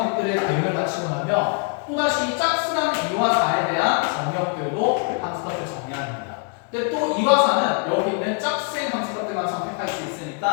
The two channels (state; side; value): quieter; right; 37.4 dB